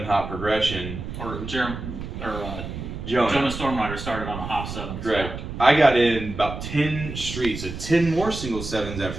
hop progression. Or Jonah Stormrider started on a hop 7. Correct. So. I got in about 10 streets, so 10 more single 7s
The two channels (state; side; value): noise; right; rumble, 8 dB below the sound